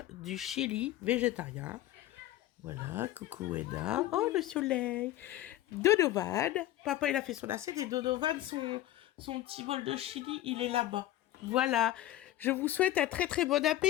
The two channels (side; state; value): right; quieter; 14.5 dB